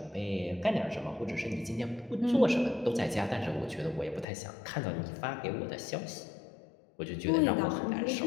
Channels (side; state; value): right; drops out; at 4.2 s